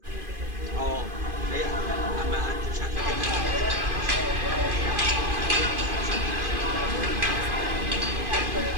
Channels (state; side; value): late; left; 2.5 ms